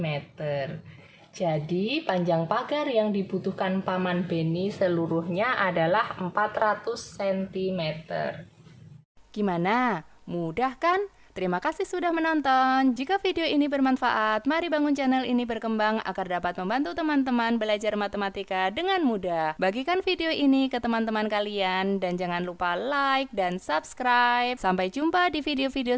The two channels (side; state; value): both; identical; correlation 1.00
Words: Jadi, panjang pagar yang dibutuhkan Paman Beni seluruhnya adalah 400 cm. Gimana? Mudah kan? Terima kasih sudah menonton. Jika video ini bermanfaat, mari bangun channel ini berkembang agar dapat membantu teman-teman belajar matematika dengan mudah. Bagikan video ini ke teman-teman kalian dan jangan lupa like dan subscribe. Sampai jumpa di